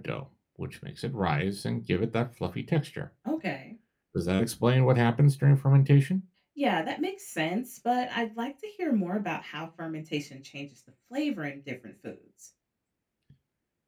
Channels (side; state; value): both; identical; correlation 1.00